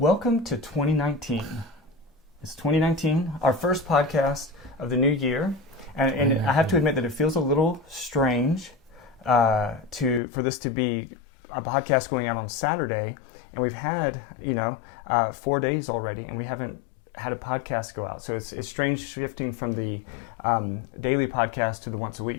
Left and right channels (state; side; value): drops out; right; at 10.2 s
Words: to 2019. It's 2019, our first podcast of the new year, and I have to admit that it feels a little strange for this to be a podcast going out on Saturday, and we've had 4 days already, and we haven't had a podcast go out. So it's strange shifting from the daily podcast to the once a